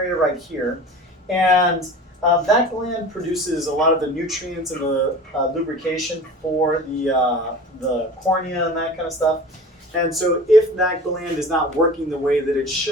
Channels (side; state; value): both; normal; correlation 0.38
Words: right here. And that gland produces a lot of the nutrients and the lubrication for the cornea and that kind of stuff. And so if that gland is not working the way that it